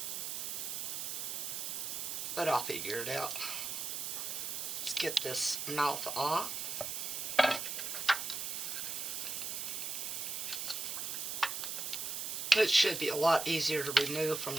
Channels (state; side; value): noise; right; hiss, 3 dB below the sound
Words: but I'll figure it out. Let's get this mouth off. It should be a lot easier to remove from